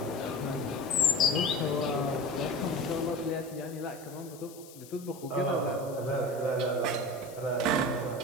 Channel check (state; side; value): noise; left; hiss, 19 dB below the sound